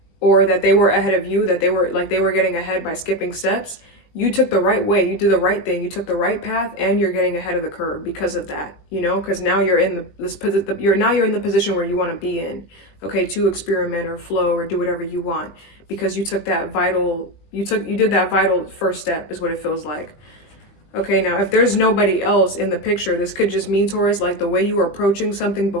or that they were ahead of you, that they were getting ahead by skipping steps. You took the right way. You did the right thing. You took the right path, and you're getting ahead of the curve because of that, you know, because now you're in you're in the position where you want to be in, okay, to experiment or flow or do whatever you want, because you took that you did that vital first step, is what it feels like. Okay, now if there's nobody else in the picture, this could just mean, Taurus, like the way you were approaching something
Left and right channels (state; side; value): late; right; 20 ms